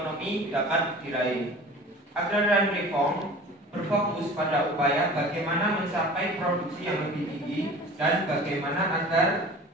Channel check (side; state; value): both; normal; correlation 0.41